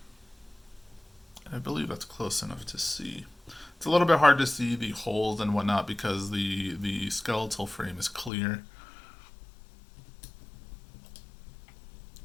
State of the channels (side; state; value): right; drops out; at 8.3 s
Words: I believe that's close enough to see. It's a little bit hard to see the holes and whatnot because the skeletal frame is clear.